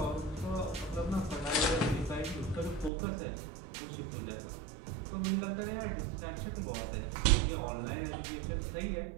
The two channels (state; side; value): drops out; left; at 2.9 s